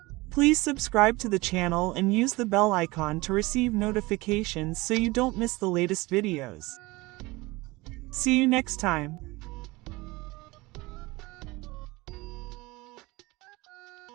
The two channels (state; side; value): quieter; left; 22.0 dB